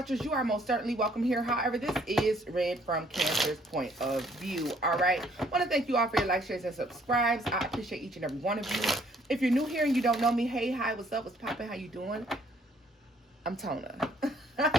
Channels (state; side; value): normal; both; correlation 0.64